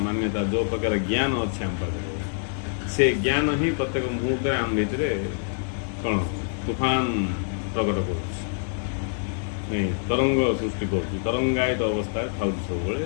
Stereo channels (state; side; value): silent; right; digital silence